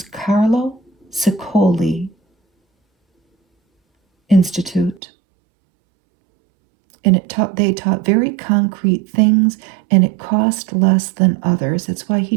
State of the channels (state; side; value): drops out; left; at 5.0 s